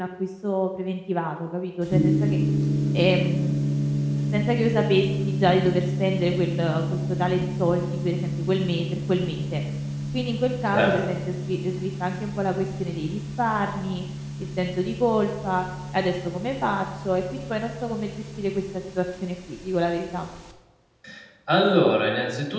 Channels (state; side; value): identical; both; correlation 1.00